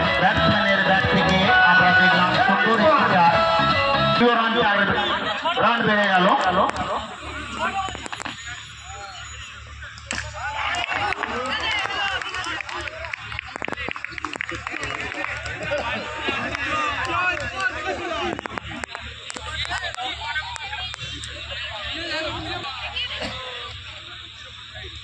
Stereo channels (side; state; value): both; identical; correlation 1.00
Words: ব্যাট থেকে আমরা দেখলাম সুন্দর একটি চার, রান বেড়ে গেল।